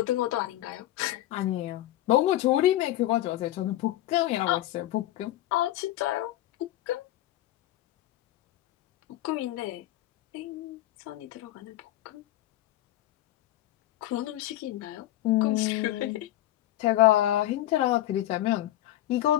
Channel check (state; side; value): quieter; right; 14.5 dB